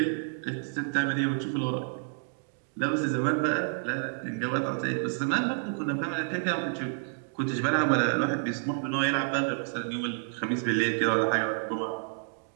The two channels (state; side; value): silent; left; digital silence